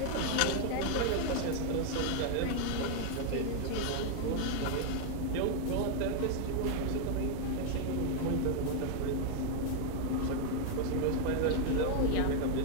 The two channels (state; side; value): different; both; correlation 0.01